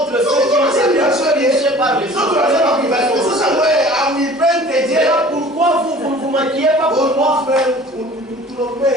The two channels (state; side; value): normal; both; correlation 0.46